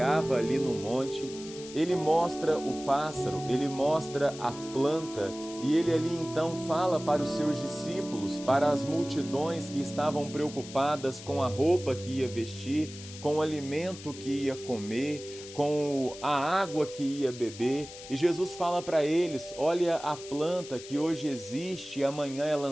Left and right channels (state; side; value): noise; left; hiss, 15 dB below the sound